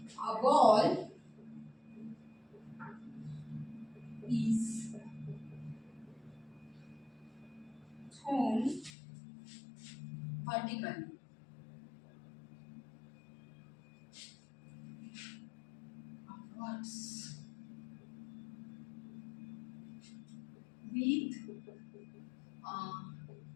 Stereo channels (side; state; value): right; drops out; at 8.9 s